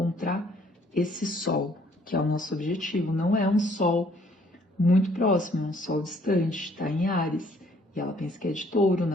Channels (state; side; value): normal; both; correlation 0.62